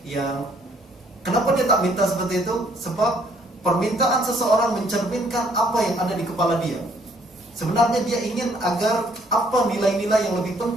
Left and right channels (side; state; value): both; normal; correlation 0.64